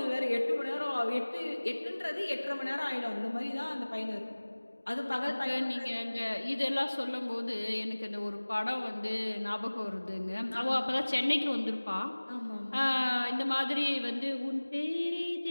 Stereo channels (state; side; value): inverted; both; correlation -1.00